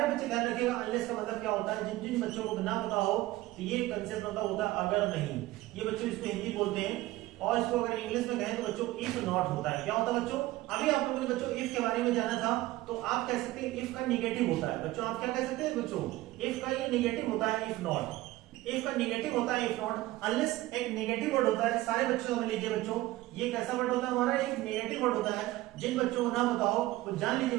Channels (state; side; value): quieter; left; 17.6 dB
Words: बच्चे ध्यान रखिएगा, अनलेस का मतलब क्या होता है। जिन जिन बच्चों को ना पता हो तो ये कंसेप्ट होता है अगर नहीं। ये बच्चों इसको हिंदी बोलते हैं, और इसको अगर इंग्लिश में कहें तो बच्चों इफ नॉट होता है। क्या होता है बच्चों? अभी आप लोगों ने बच्चों इफ के बारे में जाना था, तो आप कह सकते हैं इफ का निगेटिव होता है बच्चों। आप क्या कह सकते हैं बच्चों? इफ का ये निगेटिव होता है, इफ नॉट। इफ का निगेटिव होता है, इफ नॉट। अनलेस एक नेगेटिव वर्ड होता है। सारे बच्चों समझ लीजिए बच्चों, ये कैसा वर्ड होता है हमारा? एक नेगेटिव वर्ड होता है। जिन बच्चों को ना पता हो वो जान लीजिए